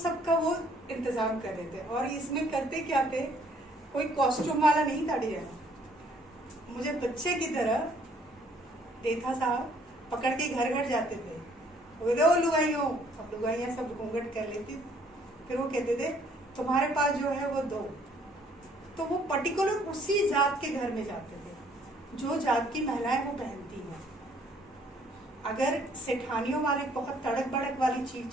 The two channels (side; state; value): both; normal; correlation 0.62